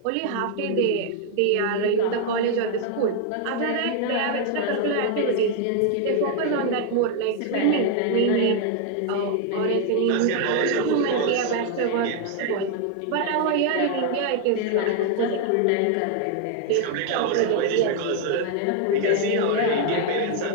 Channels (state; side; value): different; both; correlation 0.00